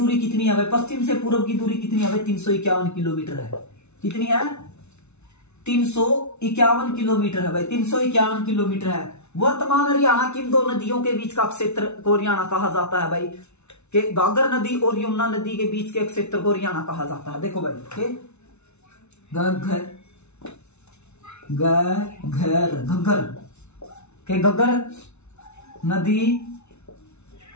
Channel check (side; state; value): right; late; 0.81 ms